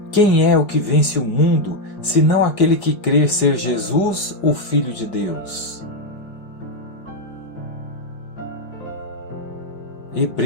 Quem é o que vence o mundo, senão aquele que crê ser Jesus, o Filho de Deus?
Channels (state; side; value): late; right; 5.0 ms